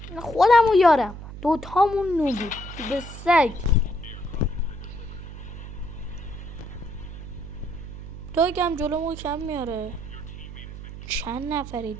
خودم و یارم دوتامون نوبی به سگ. داگم جلومو کم میاره. چند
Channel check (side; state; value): right; noise; hum, 11 dB below the sound